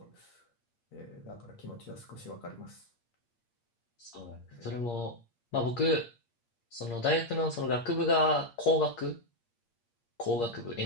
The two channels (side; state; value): right; late; 8.5 ms